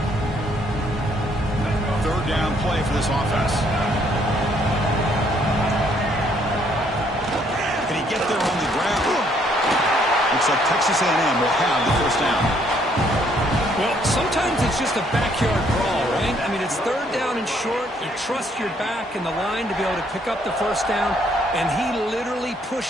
3rd down play for this offense. Can he get there on the ground? Looks like Texas A&M will have the 1st down. Well, sometimes it's just a backyard brawl, right? I mean, it's 3rd down and short. You trust your back and the line to be able to pick up the 1st down, and he literally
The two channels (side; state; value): both; normal; correlation 0.67